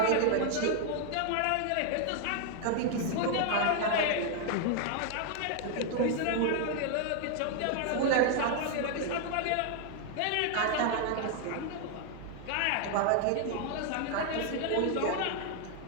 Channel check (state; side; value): different; both; correlation 0.00